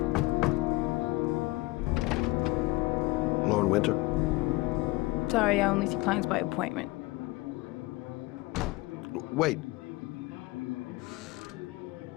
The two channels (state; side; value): quieter; right; 21.2 dB